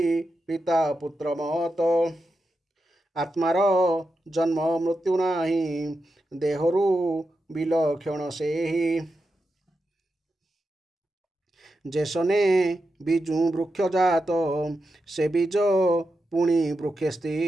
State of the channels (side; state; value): both; normal; correlation 0.88